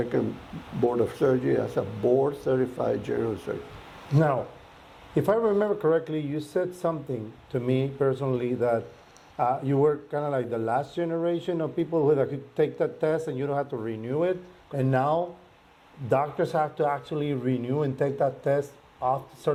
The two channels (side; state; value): both; identical; correlation 1.00